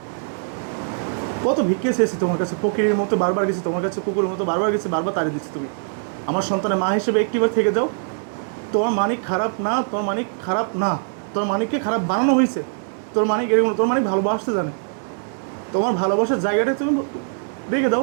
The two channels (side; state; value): left; silent; digital silence